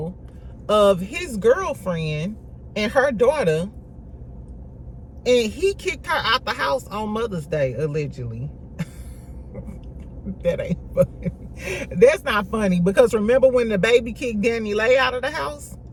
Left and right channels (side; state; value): both; identical; correlation 1.00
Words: of his girlfriend and her daughter, and he kicked her out the house on Mother's Day, allegedly. That ain't funny. That's not funny, because remember when the baby kicked Danny Lay out of the house?